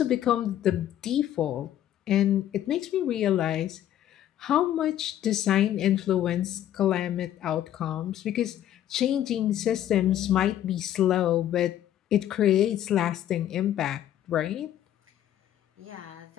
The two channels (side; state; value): right; quieter; 11.7 dB